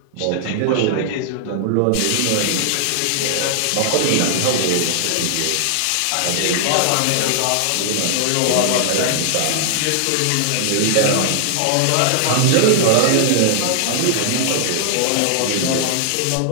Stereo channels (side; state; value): both; different; correlation -0.01